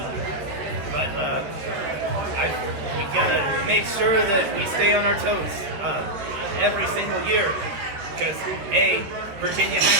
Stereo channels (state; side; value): late; left; 13 ms